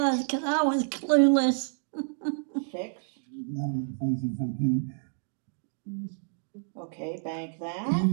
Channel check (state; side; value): silent; left; digital silence